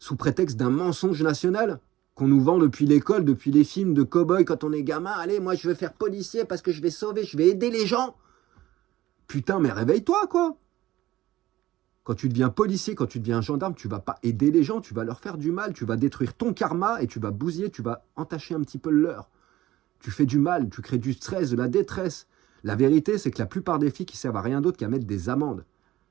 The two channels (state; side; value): quieter; left; 15.7 dB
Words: prétexte d'un mensonge national qu'on nous vend depuis l'école, depuis les films de cow-boys quand on est gamin. Allez, moi je veux faire policier parce que je vais sauver, je vais aider les gens. Putain, mais réveille-toi, quoi. Quand tu deviens policier, quand tu deviens gendarme, tu vas pas aider les gens, tu vas leur faire du mal, tu vas détruire ton karma et tu vas bousiller, tu vas entacher un petit peu le leur. Tu fais du mal, tu crées du stress, de la détresse. La vérité, c'est que la plupart des flics, ils servent à rien d'autre qu'à mettre des amendes.